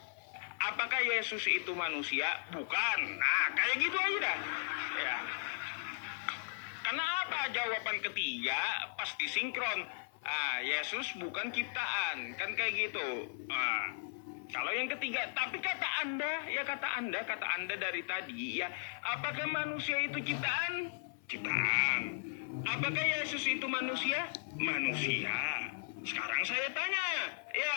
Apakah Yesus itu manusia? Bukan. Nah, kayak gitu aja dah. Ya. Karena apa? Jawaban ketiga pasti sinkron. Yesus bukan ciptaan. Kan kayak gitu. Kalau yang ketiga, tapi kata Anda dari tadi ya, apakah manusia itu ciptaan? Ciptaan. Apakah Yesus itu manusia? Manusia. Sekarang saya tanya,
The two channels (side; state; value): right; silent; 53 dB below the other